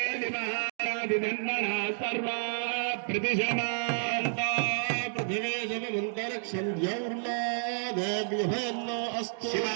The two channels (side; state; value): left; silent; digital silence